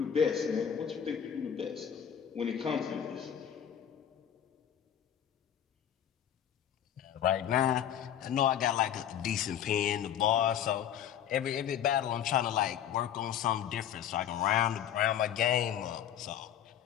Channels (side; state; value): right; quieter; 9.7 dB